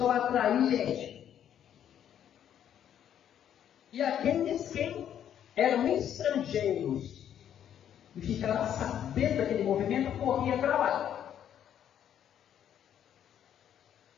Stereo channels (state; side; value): quieter; right; 9.8 dB